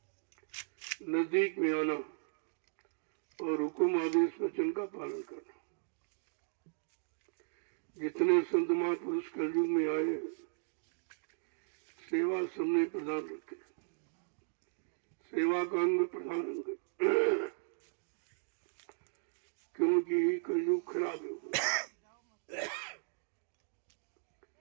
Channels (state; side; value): silent; left; digital silence